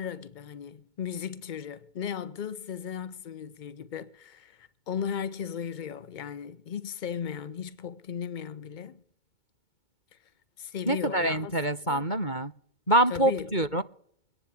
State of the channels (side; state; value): right; late; 2.2 ms